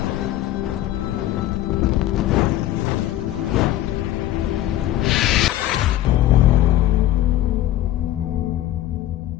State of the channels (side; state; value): right; quieter; 14.0 dB